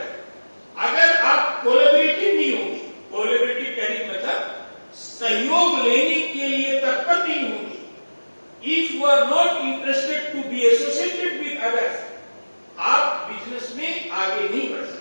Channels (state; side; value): inverted; both; correlation -1.00